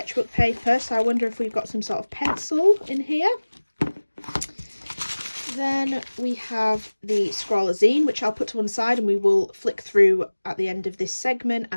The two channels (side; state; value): both; inverted; correlation -1.00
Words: paper, so I wonder if we've got some sort of pencil in here. Then we have the scrollazine, which I'll put to one side and we will flick through at the end of this segment,